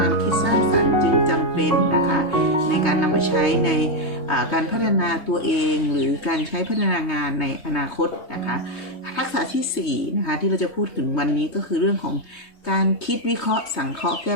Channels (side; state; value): right; late; 3.2 ms